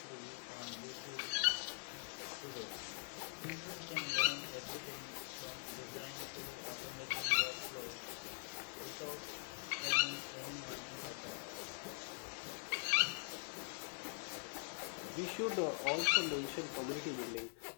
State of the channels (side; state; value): right; silent; digital silence